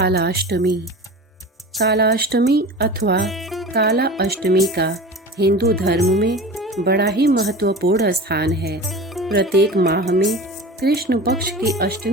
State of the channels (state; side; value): normal; both; correlation 0.34